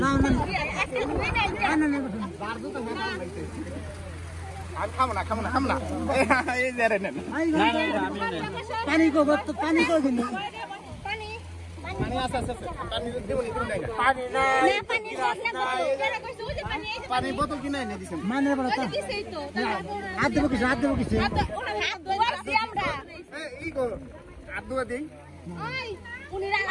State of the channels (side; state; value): both; identical; correlation 1.00